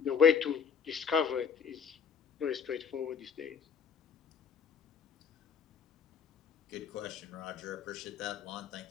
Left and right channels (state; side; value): quieter; right; 6.8 dB